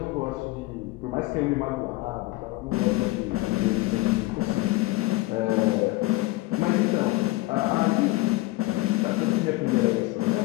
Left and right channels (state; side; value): quieter; right; 20.0 dB